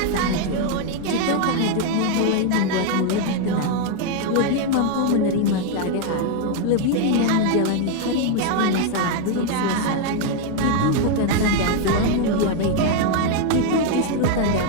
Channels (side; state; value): both; different; correlation 0.01